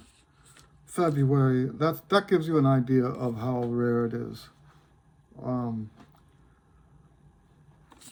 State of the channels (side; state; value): both; identical; correlation 1.00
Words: February. That gives you an idea of how rare it is.